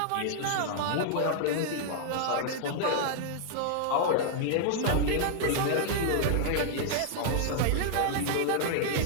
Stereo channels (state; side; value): different; both; correlation -0.01